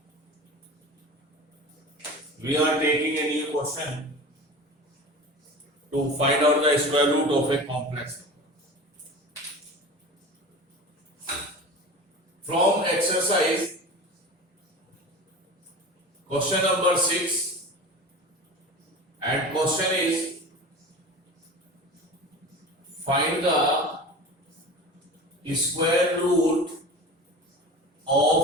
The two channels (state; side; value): normal; both; correlation 0.34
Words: we are taking a new question to find out the square root of a complex number. From exercise question number 6, and question is find the square root